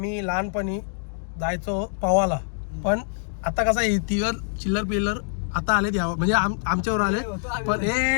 लहानपणी जायचो पवाला. पण आता कसं आहे तिघं चिल्लर पिल्लर आता आले त्या म्हणजे आमच्यावर आले. पण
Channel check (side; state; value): right; silent; digital silence